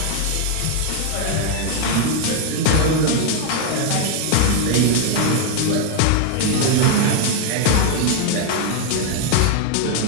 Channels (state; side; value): different; both; correlation 0.01